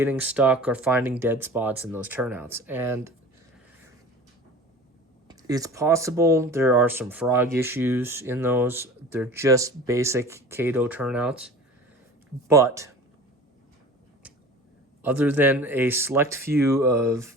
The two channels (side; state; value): both; normal; correlation 0.39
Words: stuck or finding dead spots in those turnouts. And it's possible there are some frog issues in those. They're just basic Kato turnouts. But other than a select few of